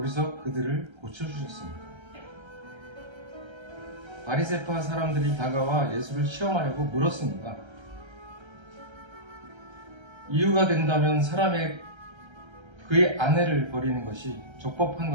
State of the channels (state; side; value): late; left; 1.3 ms